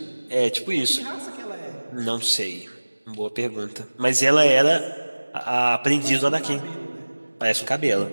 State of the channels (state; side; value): inverted; both; correlation -1.00